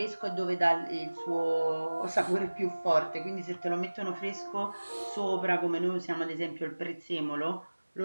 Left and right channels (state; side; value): inverted; both; correlation -1.00